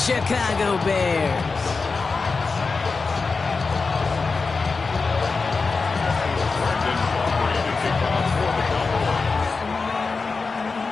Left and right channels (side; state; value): right; quieter; 4.3 dB